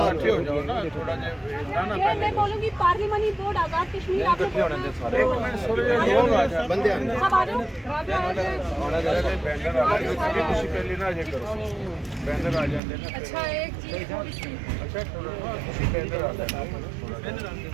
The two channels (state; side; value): drops out; left; at 12.8 s